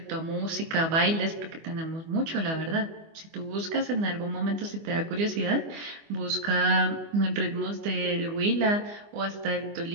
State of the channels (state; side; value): late; left; 25 ms